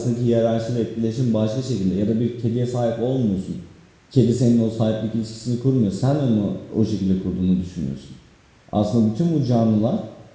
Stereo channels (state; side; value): identical; both; correlation 1.00